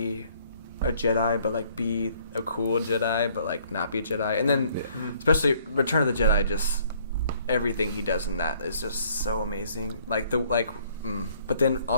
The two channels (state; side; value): inverted; both; correlation -0.62